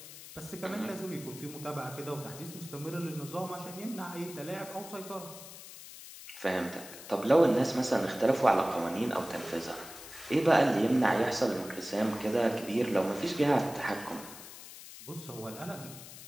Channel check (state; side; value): noise; left; hiss, 15 dB below the sound